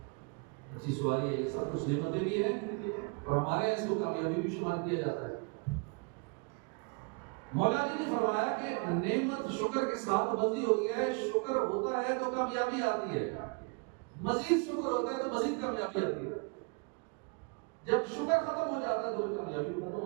اچھی سواری ہے، یہ سب کچھ نعمتیں بھی ہیں، اور ہمارے یہاں اس کو کامیابی بھی شمار کیا جاتا ہے۔ مولا جی نے فرمایا کہ نعمت شکر کے ساتھ بندھی ہوئی ہے، شکر ہوتا ہے تو کامیابی آتی ہے، مزید شکر ہوتا ہے تو مزید کامیابی آتی ہے۔ جب شکر ختم ہو جاتا ہے تو کامیابی ختم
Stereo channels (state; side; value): quieter; left; 34.2 dB